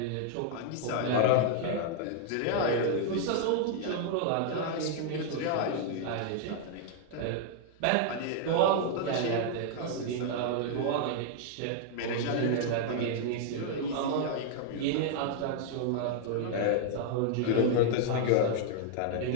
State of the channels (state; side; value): different; both; correlation 0.00